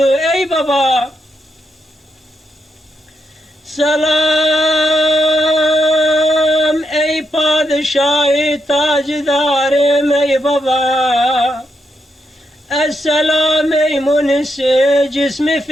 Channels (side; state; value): both; normal; correlation 0.82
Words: Ey baba! Selam ey padişah-ı tacidarım ey baba! Esselam ey munisi cismi